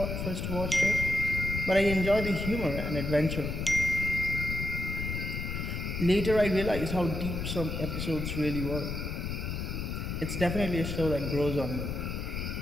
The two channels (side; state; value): left; noise; rumble, 3 dB below the sound